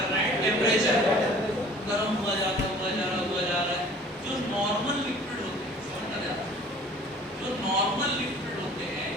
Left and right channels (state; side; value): normal; both; correlation 0.49